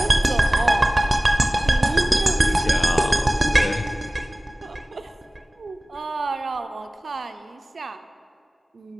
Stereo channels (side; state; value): both; normal; correlation 0.98